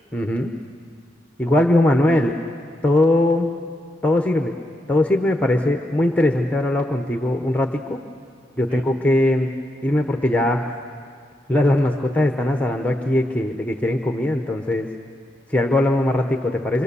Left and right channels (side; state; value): both; normal; correlation 0.83